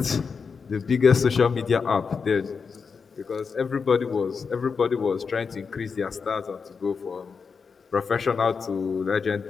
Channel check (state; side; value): quieter; right; 5.5 dB